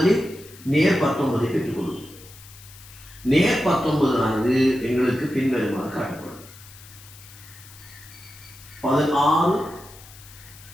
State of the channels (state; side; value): noise; left; hiss, 20 dB below the sound